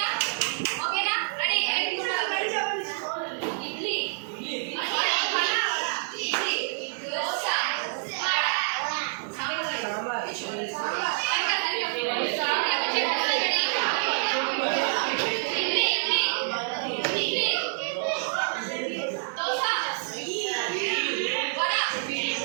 ఓకేనా? రెడీ? ఇడ్లీ, దోశ,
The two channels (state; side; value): silent; left; digital silence